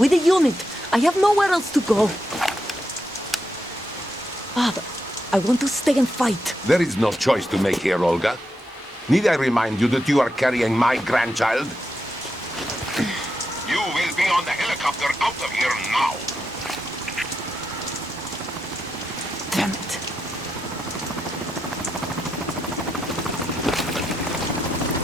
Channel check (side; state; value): both; normal; correlation 0.84